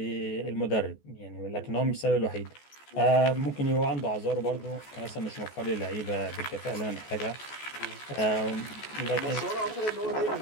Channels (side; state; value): right; late; 14 ms